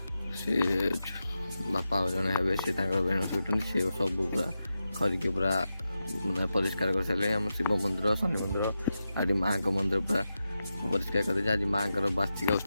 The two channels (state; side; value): inverted; both; correlation -0.90